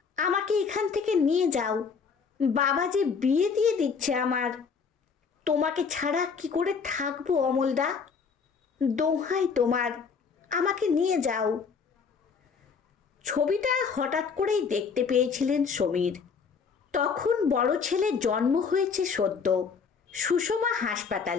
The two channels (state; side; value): quieter; right; 5.7 dB